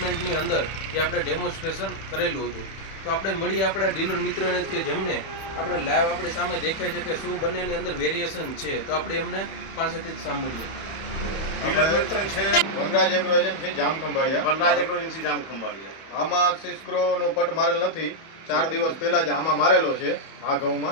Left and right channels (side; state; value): right; late; 31 ms